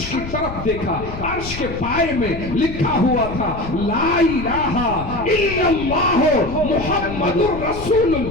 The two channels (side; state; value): left; noise; rumble, 10 dB below the sound